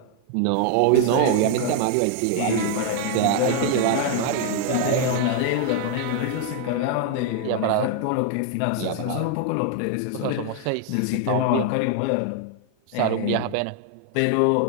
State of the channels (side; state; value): both; different; correlation 0.00